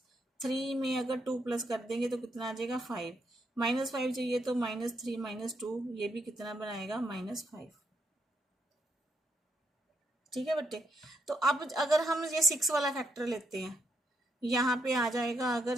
3 में अगर 2 प्लस कर देंगे तो कितना आ जाएगा, 5। -5 चाहिए तो -3 -2, ये भी कितना बनाएगा, -5। ठीक है बच्चे, तो अब अगर हम ये 6 वाला फैक्टर लेते हैं, यहाँ पे आ जाएगा, अगर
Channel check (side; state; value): both; normal; correlation 0.78